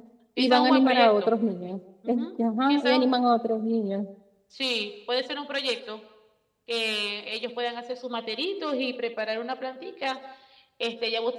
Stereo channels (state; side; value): identical; both; correlation 1.00